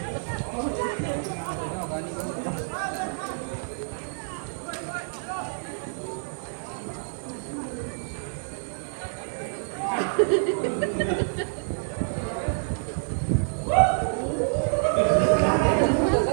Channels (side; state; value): left; silent; 60 dB below the other